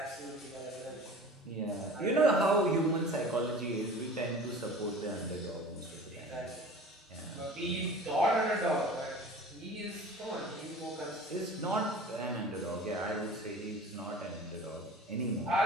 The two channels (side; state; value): both; normal; correlation 0.41